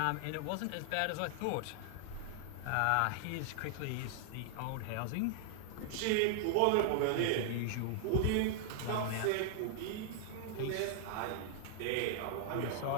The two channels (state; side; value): different; both; correlation 0.00